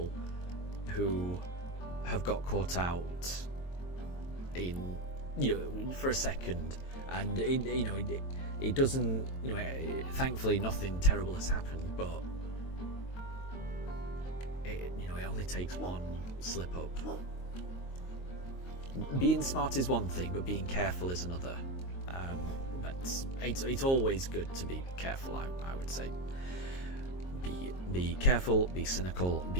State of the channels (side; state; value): right; late; 22 ms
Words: who have got caught out in, you know, for a second, and it doesn't, you know, thankfully nothing terrible has happened, but it only takes one slip up. Being smart is one thing, but being careful is another. But it's always good to be careful, I would say. Be careful, be cynical,